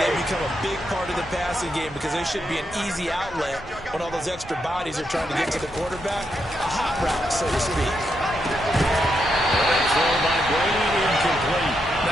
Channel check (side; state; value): both; normal; correlation 0.81